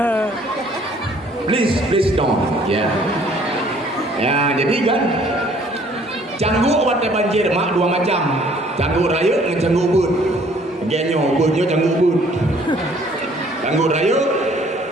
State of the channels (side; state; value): both; normal; correlation 0.59